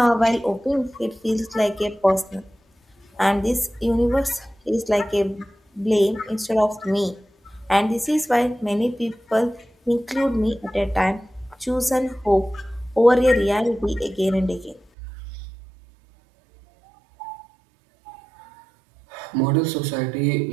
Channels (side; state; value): left; drops out; at 14.9 s